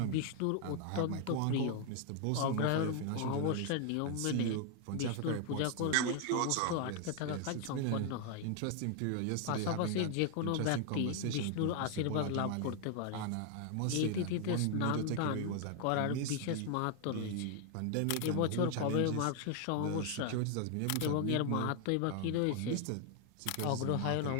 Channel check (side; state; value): both; different; correlation 0.00